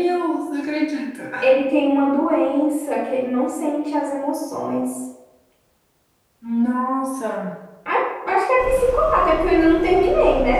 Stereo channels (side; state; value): both; identical; correlation 1.00